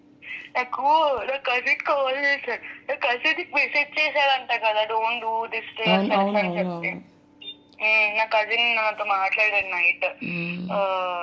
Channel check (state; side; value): identical; both; correlation 1.00